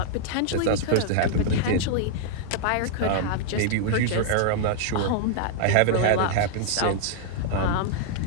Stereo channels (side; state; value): both; different; correlation -0.01